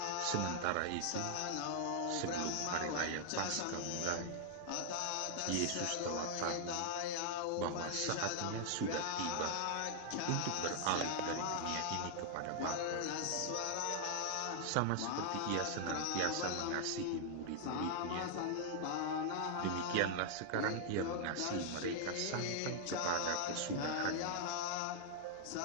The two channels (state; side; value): different; both; correlation -0.01